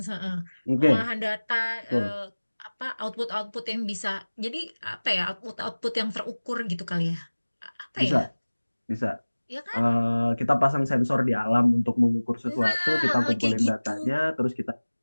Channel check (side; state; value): both; inverted; correlation -1.00